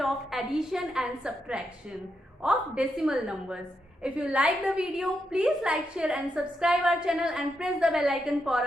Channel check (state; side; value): normal; both; correlation 0.83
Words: of addition and subtraction of decimal numbers. If you like the video, please like, share and subscribe our channel and press the bell icon for